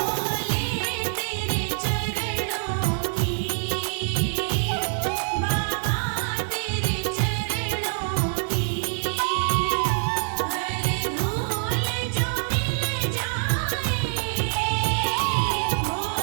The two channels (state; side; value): silent; left; digital silence